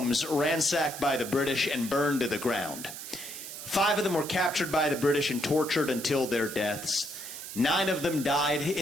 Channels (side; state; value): right; noise; hiss, 10 dB below the sound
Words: ransacked by the British and burned to the ground. 5 of them were captured by the British and tortured until their deaths. 9 of them died